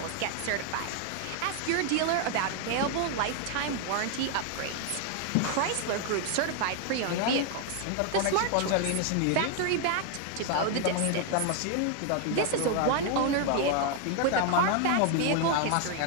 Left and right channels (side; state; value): both; different; correlation 0.00